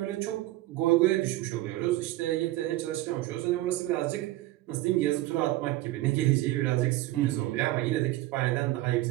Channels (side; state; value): left; quieter; 16.8 dB